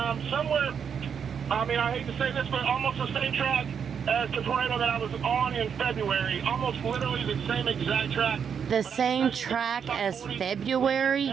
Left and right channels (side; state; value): left; quieter; 7.2 dB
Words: Somewhere, I mean, I hate to say this, but almost the same track as the tornado that I was on in February. Almost literally the same exact track. The same track as February?